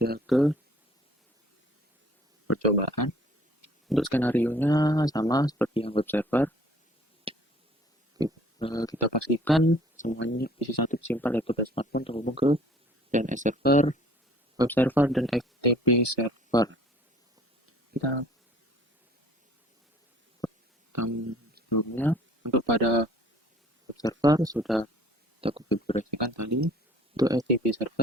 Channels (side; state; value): both; normal; correlation 0.55